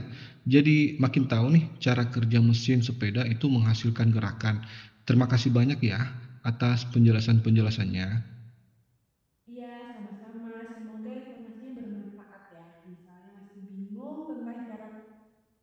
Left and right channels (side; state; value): both; identical; correlation 1.00